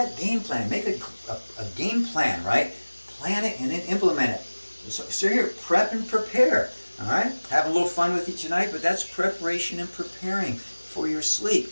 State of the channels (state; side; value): inverted; both; correlation -1.00